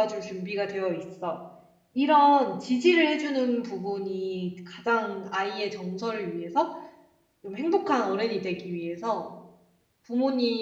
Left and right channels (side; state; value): both; identical; correlation 1.00